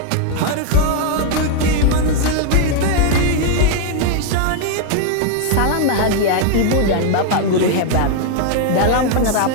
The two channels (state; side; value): different; both; correlation 0.00